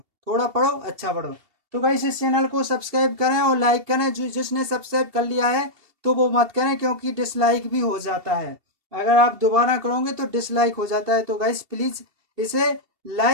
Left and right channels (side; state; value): left; late; 2.7 ms